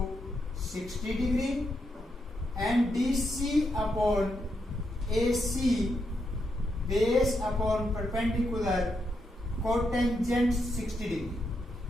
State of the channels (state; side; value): normal; both; correlation 0.81